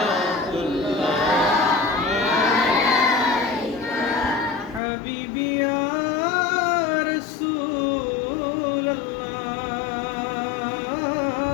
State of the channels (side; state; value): right; drops out; at 4.8 s